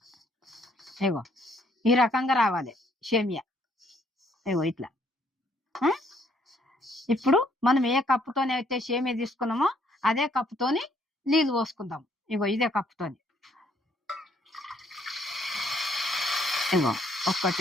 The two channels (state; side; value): normal; both; correlation 0.67